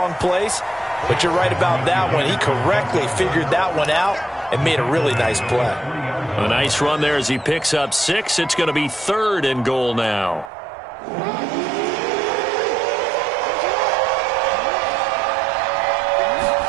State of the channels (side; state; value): left; drops out; at 10.5 s